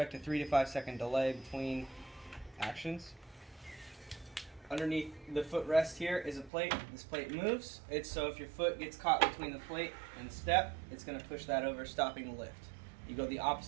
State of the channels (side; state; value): left; drops out; at 6.5 s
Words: a 3 to 5 second delay between actions. Underneath the footrest here is a plate. This plate moves. It's so if your foot gets caught between the plate and the step, it's going to push that over, stopping the lift. You go the